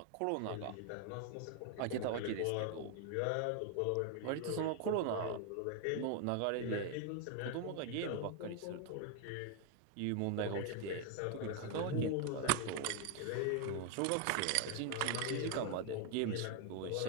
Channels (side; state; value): both; different; correlation 0.00